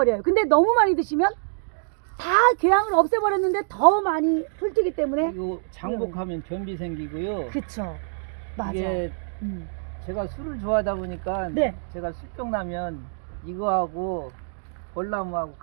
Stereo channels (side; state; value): left; silent; digital silence